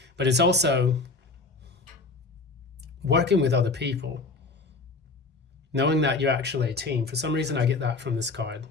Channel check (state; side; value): quieter; right; 3.6 dB